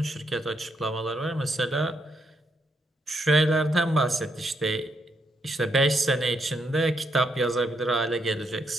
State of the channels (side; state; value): both; normal; correlation 0.77